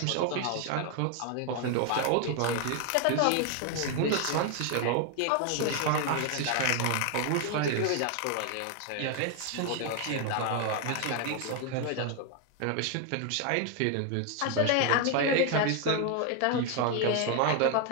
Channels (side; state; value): both; different; correlation 0.01